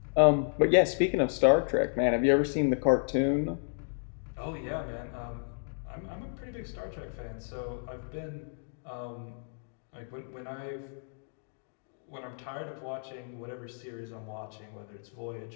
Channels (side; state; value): right; silent; digital silence